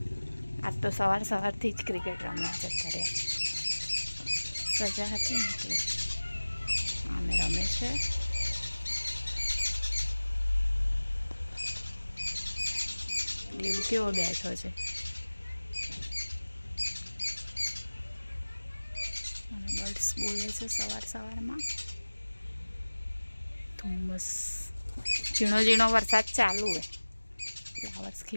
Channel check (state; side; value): inverted; both; correlation -1.00